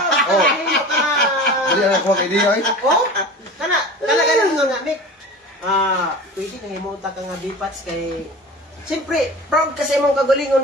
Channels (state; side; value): normal; both; correlation 0.36